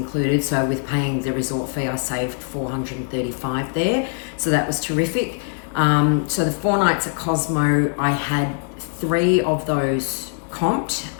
So with paying the resort fee, I saved $435 there. So that was terrific. So the 4 nights at Cosmo, I had 3 of those comped.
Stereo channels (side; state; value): right; silent; 56 dB below the other